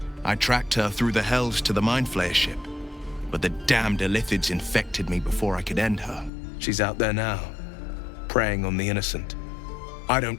I tracked her through the hells to the Mind Flayer ship, but the damned Illithids infected me before I could end her. She's out there now, preying on the innocent. I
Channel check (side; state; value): right; drops out; at 6.3 s